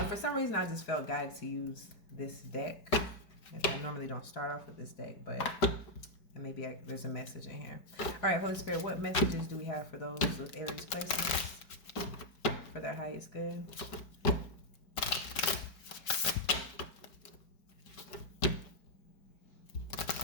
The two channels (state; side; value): late; right; 4.7 ms